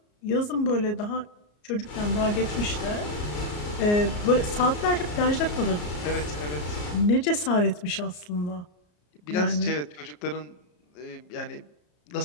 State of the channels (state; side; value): late; right; 34 ms